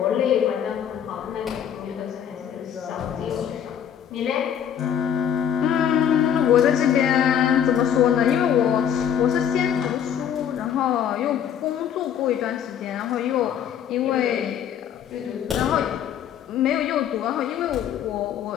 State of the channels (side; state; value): right; quieter; 9.0 dB